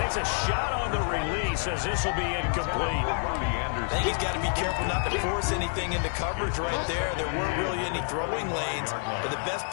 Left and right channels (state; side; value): silent; right; 59 dB below the other